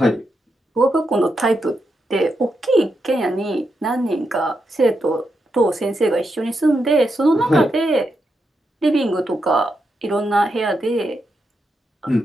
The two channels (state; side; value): normal; both; correlation 0.84